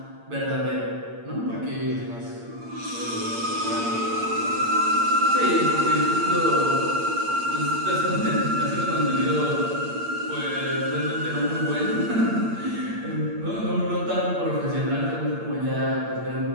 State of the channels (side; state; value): left; late; 8.7 ms